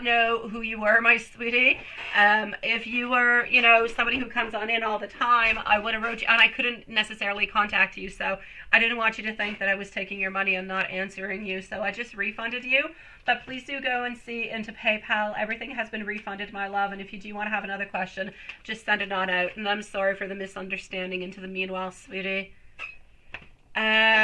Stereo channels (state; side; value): identical; both; correlation 1.00